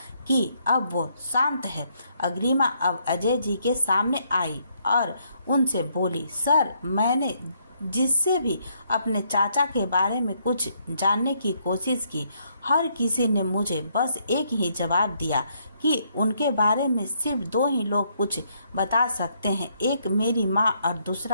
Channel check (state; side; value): inverted; both; correlation -0.72